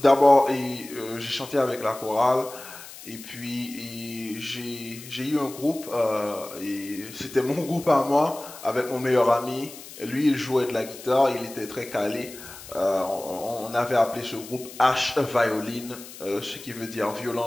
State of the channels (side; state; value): left; noise; hiss, 15 dB below the sound